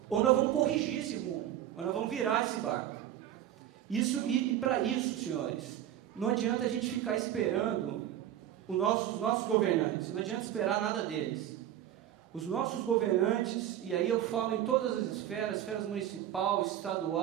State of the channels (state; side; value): quieter; left; 11.5 dB